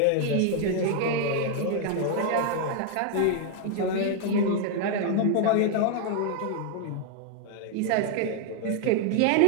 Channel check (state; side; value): different; both; correlation 0.00